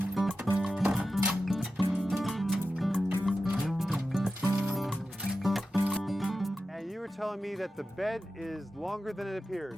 And you were telling me that the bed is longer than it appears.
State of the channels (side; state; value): both; normal; correlation 0.92